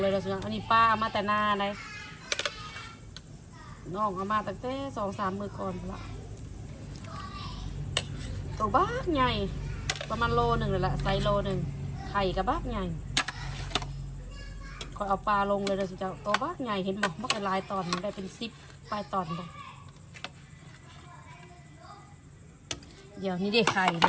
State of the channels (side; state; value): both; identical; correlation 1.00